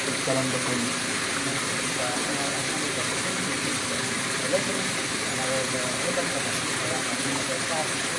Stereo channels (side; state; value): both; identical; correlation 1.00